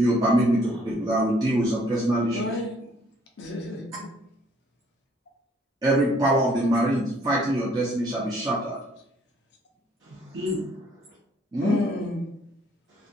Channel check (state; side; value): normal; both; correlation 0.63